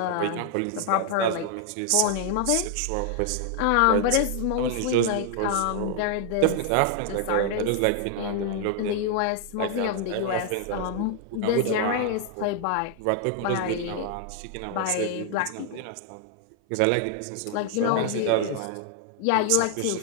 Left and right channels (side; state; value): both; different; correlation 0.00